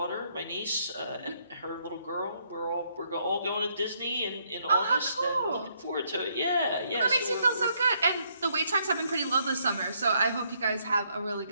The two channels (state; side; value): inverted; both; correlation -0.72